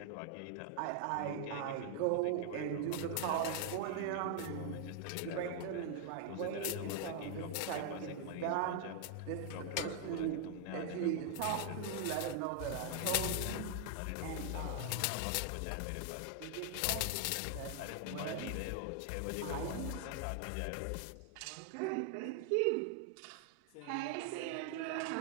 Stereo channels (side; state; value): both; different; correlation 0.00